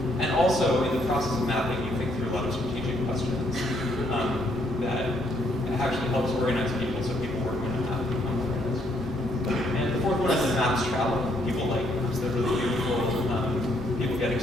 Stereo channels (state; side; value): normal; both; correlation 0.70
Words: And also, in the process of mapping, you think through a lot of strategic questions that actually helps organize people, so people working on a map become organized. And the fourth one is that maps travel. People like maps, they're really beautiful. People get